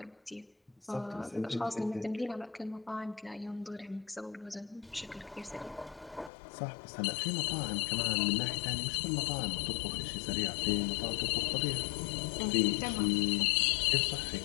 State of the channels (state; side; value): drops out; right; at 6.3 s